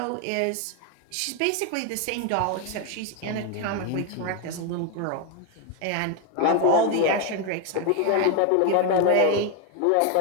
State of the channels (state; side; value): different; both; correlation 0.01